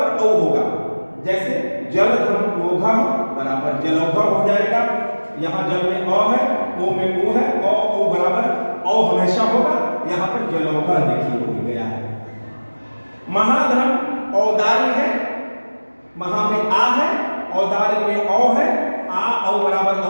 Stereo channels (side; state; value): both; inverted; correlation -1.00